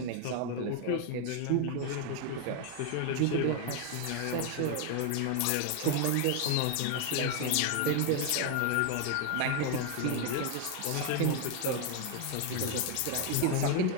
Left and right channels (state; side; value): different; both; correlation 0.01